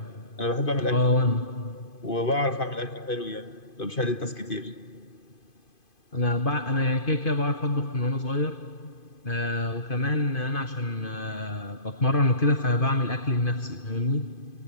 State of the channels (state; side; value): late; right; 2.5 ms